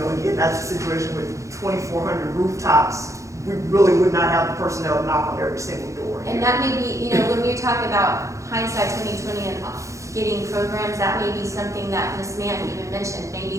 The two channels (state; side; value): late; left; 0.15 ms